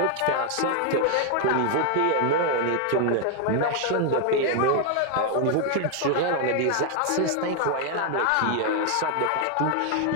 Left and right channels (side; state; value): both; different; correlation 0.00